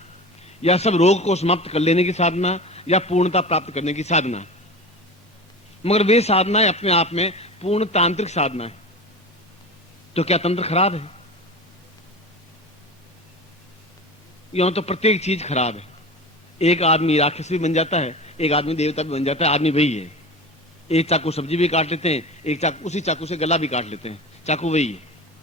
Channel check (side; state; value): both; normal; correlation 0.31